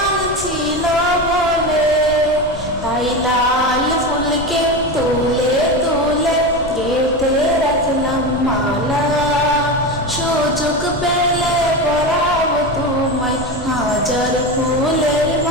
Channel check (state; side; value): noise; left; rumble, 13 dB below the sound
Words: ছিল বলে, তাই লাল ফুলকে তুলে তুলে গেঁথে রাখলাম মালা, সুযোগ পেলে পরাব তোমায় হাজার ফুলের